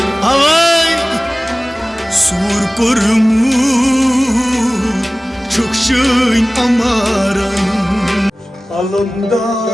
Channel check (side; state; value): both; normal; correlation 0.98